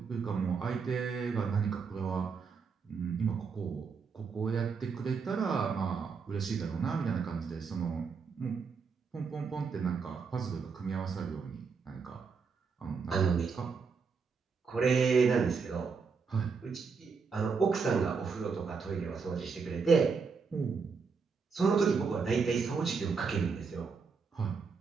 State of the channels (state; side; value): quieter; left; 5.4 dB